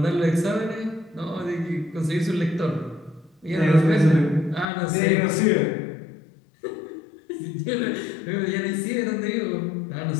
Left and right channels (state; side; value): drops out; right; at 4.7 s